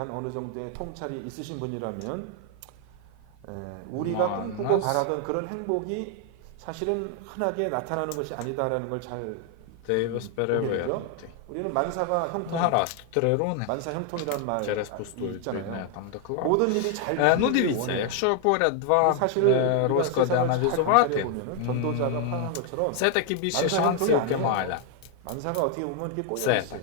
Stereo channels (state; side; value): different; both; correlation 0.00